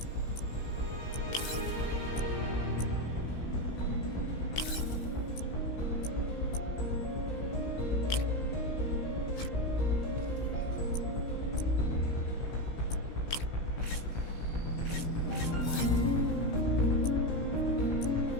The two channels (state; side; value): late; right; 16 ms